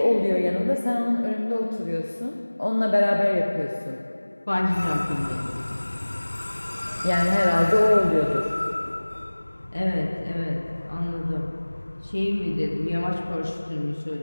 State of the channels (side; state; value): both; inverted; correlation -1.00